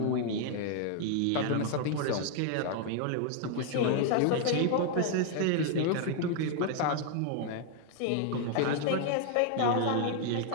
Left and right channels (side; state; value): both; different; correlation 0.00